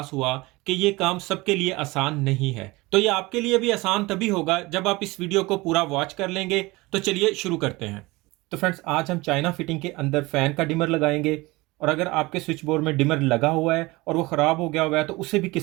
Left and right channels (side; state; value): left; quieter; 22.0 dB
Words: हुआ कि ये काम सबके लिए आसान नहीं है। तो ये आपके लिए भी आसान तभी होगा जब आप इस वीडियो को पूरा वॉच कर लेंगे। तो चलिए शुरू करते हैं। तो फ्रेंड्स, आज हम चाइना फिटिंग के अंदर फ़ैन का डिमर लगाएंगे। और अगर आपके स्विच बोर्ड में डिमर लगा हुआ है और वो ख़राब हो गया हुआ है तो उसे भी